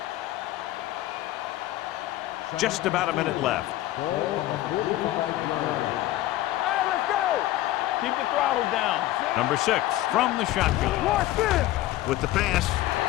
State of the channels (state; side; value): quieter; right; 15.3 dB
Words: Just about a minute left. Ball on the 45-yard line. Hey, let's go. Keep the throttle down. Number 6 from the shotgun. Watch this. With the pass,